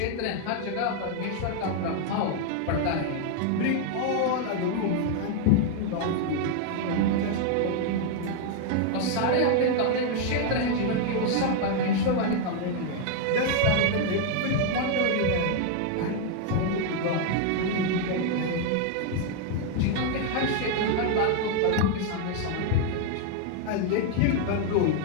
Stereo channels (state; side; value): different; both; correlation 0.00